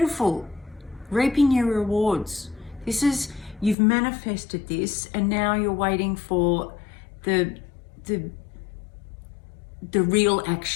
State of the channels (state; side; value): drops out; right; at 3.8 s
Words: Reaping your rewards. This is, you've manifested this, and now you're waiting for the real